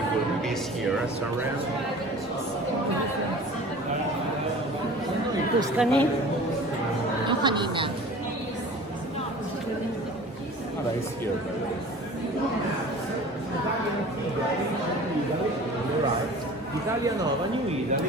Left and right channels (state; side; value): normal; both; correlation 0.42